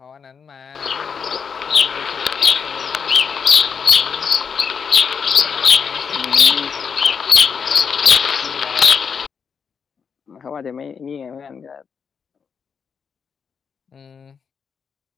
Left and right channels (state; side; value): quieter; right; 6.3 dB